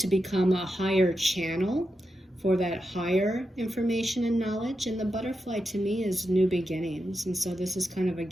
become a higher channel for that higher information and knowledge. And the butterfly to me is new beginnings. And so this is kind of,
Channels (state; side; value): normal; both; correlation 0.87